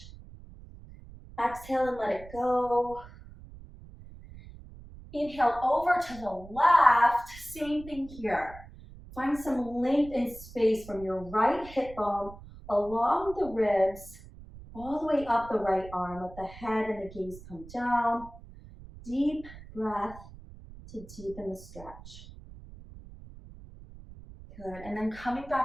Exhale and let it go. Inhale over to the left. Same thing here. Find some length and space from your right hip bone along the ribs, all the way up the right arm. Let the head and the gaze come down. Deep breath to deepen the stretch. Good, and then coming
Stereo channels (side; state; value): right; noise; rumble, 17 dB below the sound